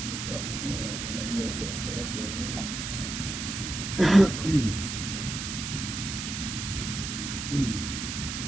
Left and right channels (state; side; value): noise; right; hiss, 5 dB below the sound